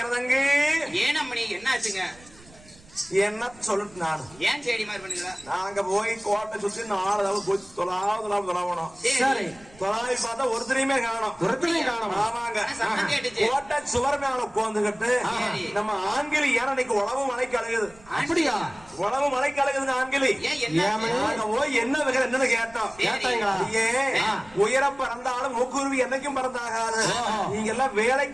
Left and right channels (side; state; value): right; noise; rumble, 24 dB below the sound